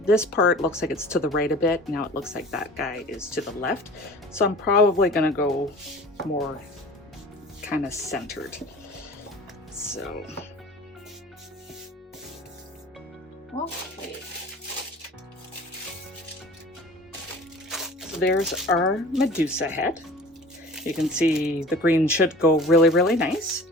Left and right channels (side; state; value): both; normal; correlation 0.43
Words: part looks like it's to the right a bit. Now it looks like that guy is to the left. So I'm probably gonna go more kind of centered. So, okay. So there's our Medusa head. You can see the green should go really, really nice.